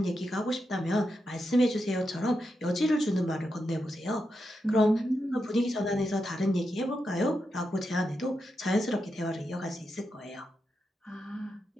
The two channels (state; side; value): normal; both; correlation 0.86